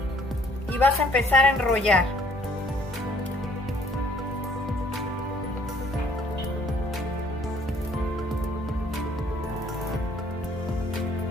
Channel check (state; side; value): normal; both; correlation 0.60